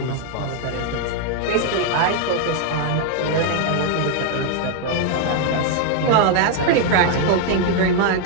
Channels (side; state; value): both; different; correlation 0.00